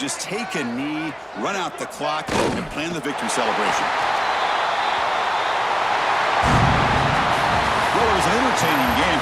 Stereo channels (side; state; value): both; identical; correlation 1.00